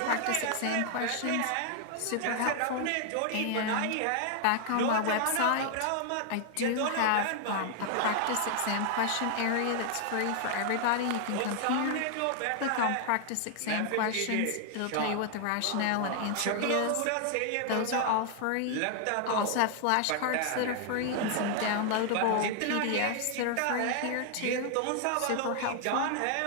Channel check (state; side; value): different; both; correlation 0.00